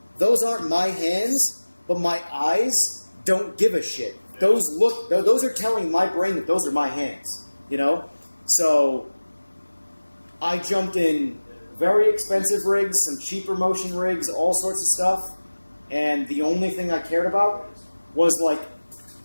those aren't my hands, but my eyes don't give a shit. Those are telling my brain that those are my hands, you know? So I jumped in very expensive rigs, some cheaper motion rigs, all sorts of stuff. And the only thing I cared about was like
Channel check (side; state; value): both; inverted; correlation -1.00